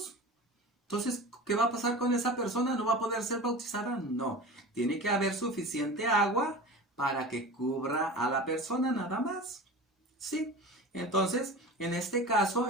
Entonces, ¿qué va a pasar con esa persona? ¿No va a poder ser bautizada? No. Tiene que haber suficiente agua para que cubra a la persona nada más. Sí. Entonces, en este caso,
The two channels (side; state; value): both; normal; correlation 0.34